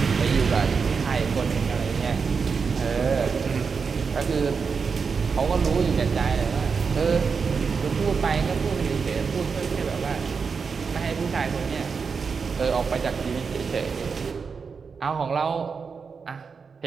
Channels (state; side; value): quieter; left; 5.5 dB